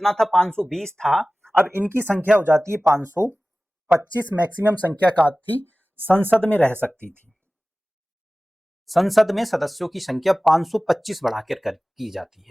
था 520 था, अब इनकी संख्या हो जाती है 525। मैक्सिमम संख्या का थी संसद में रह सकती थी। संसद में सदस्यों की संख्या 525 बढ़ाकर की जाती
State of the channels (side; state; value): both; normal; correlation 0.97